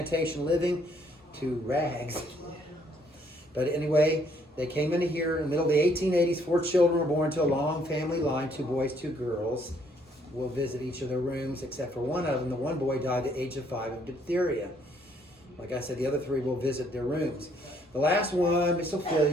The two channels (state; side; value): normal; both; correlation 0.66